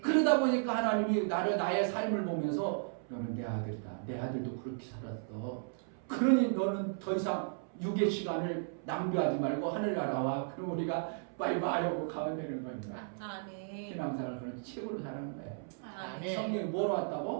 그러다 보니까 하나님이 나의 삶을 보면서 너는 내 아들이다. 내 아들도 그렇게 살았어. 그러니 너는 더 이상 육의 시간을 낭비하지 말고 하늘나라와 그럼 우리가 바이바이 하고 가면 되는 겁니다. 아멘. 신앙생활을 그런 책으로 사는 거예요. 아멘. 성령이 뭐로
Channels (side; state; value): left; silent; 55 dB below the other